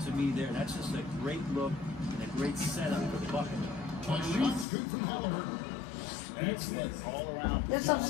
to me there. That's just a great look and a great setup for the bucket. A shot's good from Halliburton. Excellent all-around Let's not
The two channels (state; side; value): drops out; right; at 4.7 s